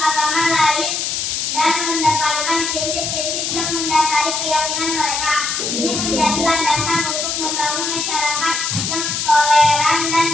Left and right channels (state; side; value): noise; left; hiss, 1 dB below the sound